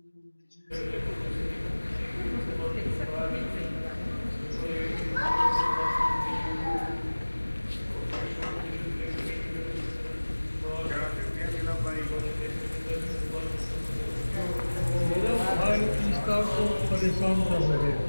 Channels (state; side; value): inverted; both; correlation -1.00